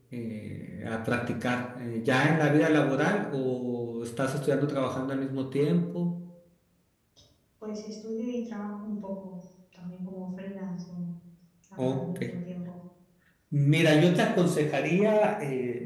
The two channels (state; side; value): identical; both; correlation 1.00